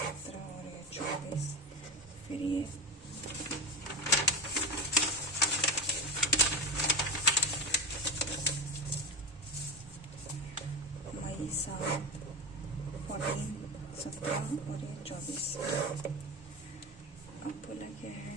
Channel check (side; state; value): both; normal; correlation 0.20